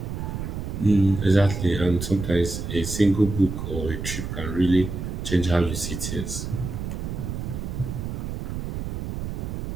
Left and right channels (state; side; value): noise; right; rumble, 5 dB below the sound